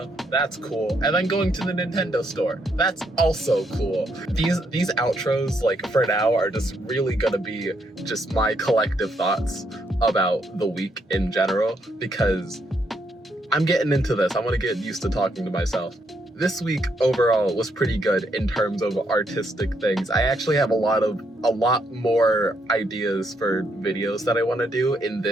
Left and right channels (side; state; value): both; normal; correlation 0.75